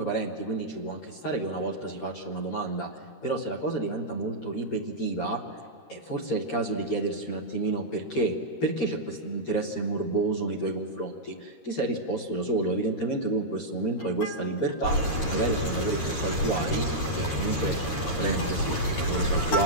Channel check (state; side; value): late; right; 13 ms